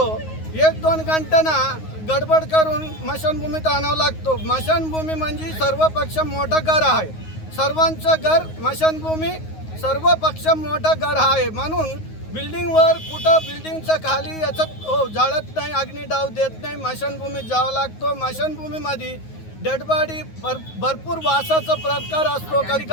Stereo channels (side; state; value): right; late; 9.5 ms